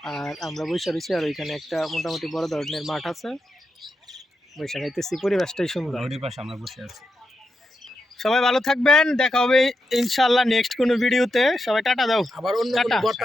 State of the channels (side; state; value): both; normal; correlation 0.87